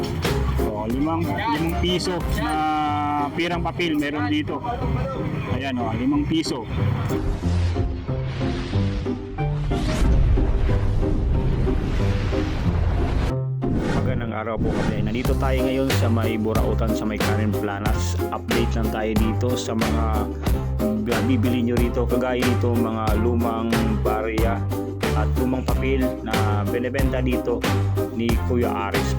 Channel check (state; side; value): identical; both; correlation 1.00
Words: 5 piso na perang papel meron dito. Ayan, 5 piso. Magandang araw po kasi nandito tayo ngayon sa may Burautan sa may Karen Planas. Update lang tayo dito sa mga bibili nyo rito, kagaya dito mga lumang barya at lumang papel na binebenta dito ni Kuya Aris.